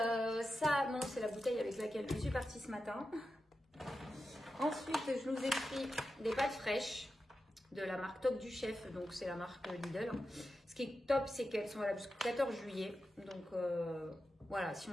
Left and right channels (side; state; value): both; normal; correlation 0.91